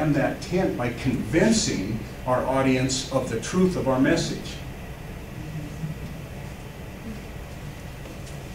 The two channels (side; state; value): both; identical; correlation 1.00